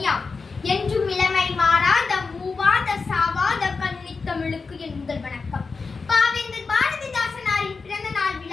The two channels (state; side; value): quieter; right; 4.5 dB